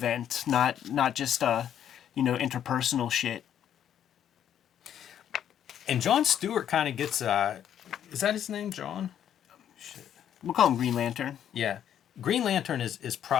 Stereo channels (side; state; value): right; quieter; 9.8 dB